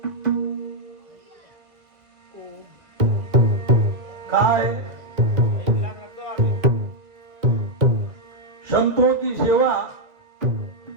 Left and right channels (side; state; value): left; late; 1.8 ms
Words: काय संतों की सेवा,